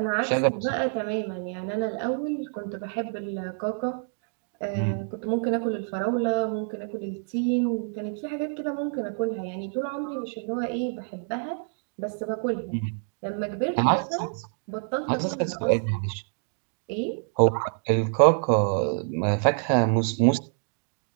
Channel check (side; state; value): left; silent; 60 dB below the other